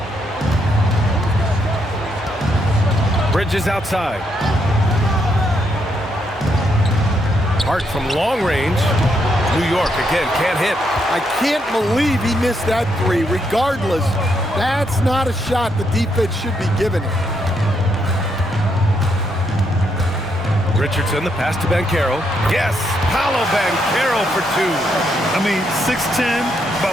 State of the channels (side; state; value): both; normal; correlation 0.77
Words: Bridges outside. Hart from long range. New York again, can't hit. I can't believe he missed that 3. Regardless, That's not a shot the defense should be giving it. Richardson, the pass to Banchero. Yes, Paolo Banchero for two. I mean, 6'10",